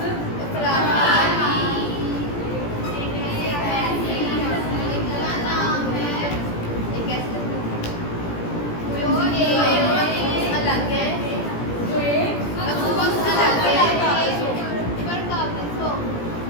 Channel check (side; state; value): right; late; 17 ms